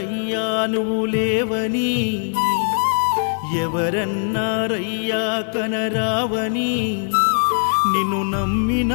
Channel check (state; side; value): silent; right; digital silence